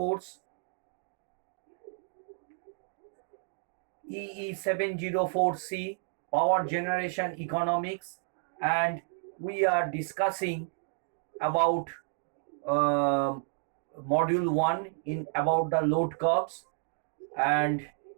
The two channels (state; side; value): silent; left; 57 dB below the other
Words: EE704C Power Generation Economics, and we are discussing about uh, module 1 in about the load curves, and